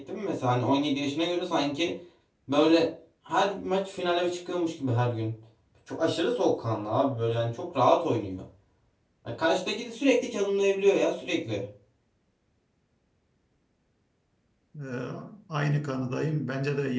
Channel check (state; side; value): identical; both; correlation 1.00